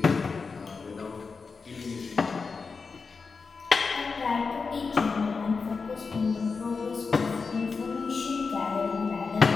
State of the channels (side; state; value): right; quieter; 4.8 dB